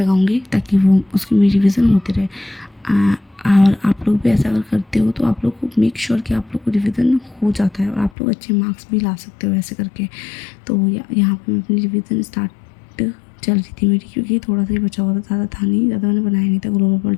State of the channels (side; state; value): right; drops out; at 8.1 s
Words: ताकि वो उसकी मेरी रिवीजन होती रहे। और आप लोग भी ऐसा अगर करते हो तो आप लोग को मेक श्योर कि आप लोग को रिवीजन हो जाता है और आप लोग अच्छे मार्क्स भी ला सकते हो ऐसे करके। तो यहाँ पे मैं अपनी रिवीजन स्टार्ट चल रही थी मेरी, क्योंकि थोड़ा सा ही बचा हुआ था, ज़्यादा था नहीं, ज़्यादा मैंने बनाया नहीं था ग्लोबल